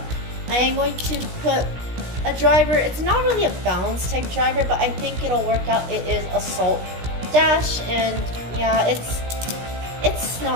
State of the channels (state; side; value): late; left; 17 ms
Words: I am going to put a driver. It's not really a balance type driver, but I think it'll work out. It is Assault Dash, and yeah, it's